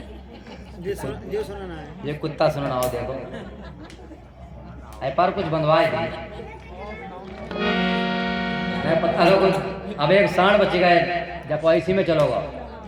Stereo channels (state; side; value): identical; both; correlation 1.00